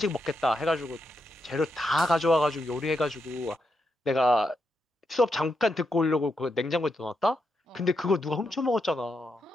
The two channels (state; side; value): normal; both; correlation 0.83